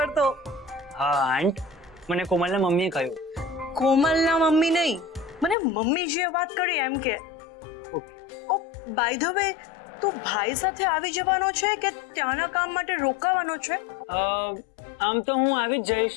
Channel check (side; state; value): right; drops out; at 5.6 s